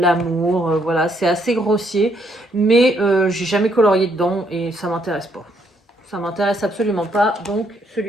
Voilà, c'est assez grossier. Mais j'ai jamais colorié dedans et ça m'intéresse pas. Ça m'intéresse absolument pas. Donc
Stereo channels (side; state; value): both; normal; correlation 0.72